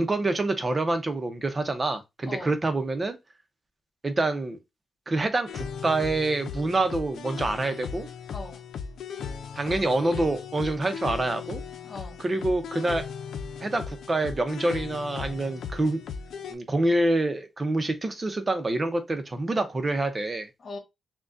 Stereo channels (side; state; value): both; normal; correlation 0.90